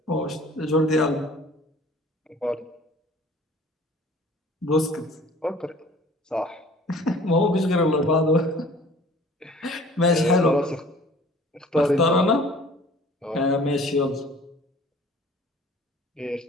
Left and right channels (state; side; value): normal; both; correlation 0.49